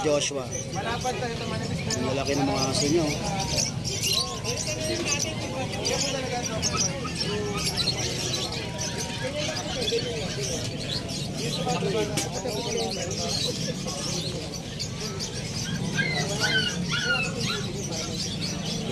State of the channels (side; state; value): both; identical; correlation 1.00